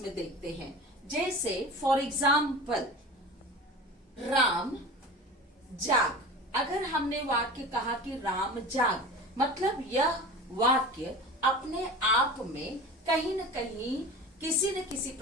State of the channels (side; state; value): both; normal; correlation 0.34